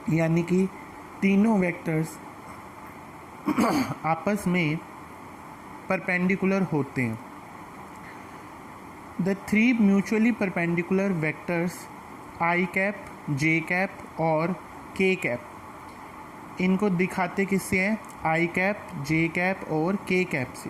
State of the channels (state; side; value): identical; both; correlation 1.00